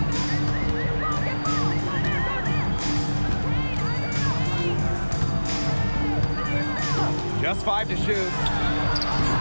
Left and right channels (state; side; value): inverted; both; correlation -1.00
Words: Just 5 to shoot.